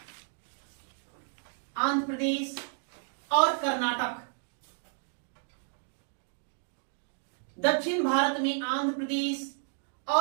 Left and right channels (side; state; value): left; silent; 56 dB below the other